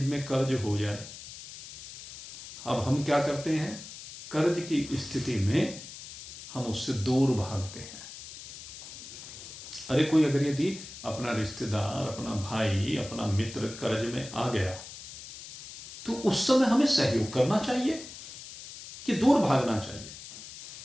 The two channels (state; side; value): noise; left; hiss, 13 dB below the sound